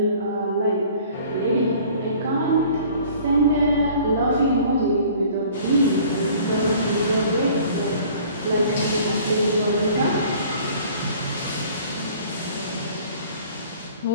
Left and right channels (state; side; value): inverted; both; correlation -0.51